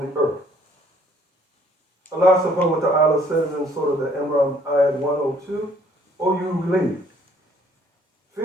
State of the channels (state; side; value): normal; both; correlation 0.61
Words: earth. Allah subhanahu wa ta'ala says in Surah the Emam, ayat 102, O you who believe,